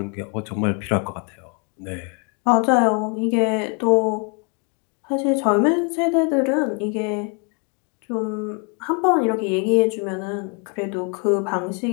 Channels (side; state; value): right; quieter; 36.8 dB